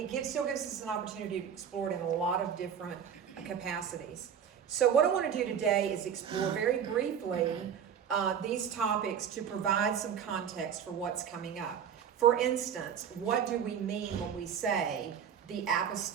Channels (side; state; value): left; quieter; 8.2 dB